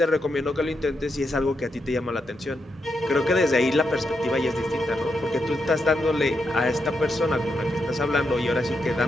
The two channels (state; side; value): normal; both; correlation 0.83